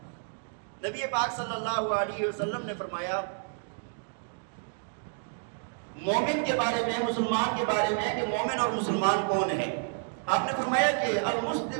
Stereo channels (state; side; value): silent; left; digital silence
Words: نبی پاک صلی اللہ علیہ وسلم نے فرمایا مومن کے بارے میں، مسلمان کے بارے میں، کہ مومن اور مسلمان کون ہے؟ آپ نے فرمایا کہ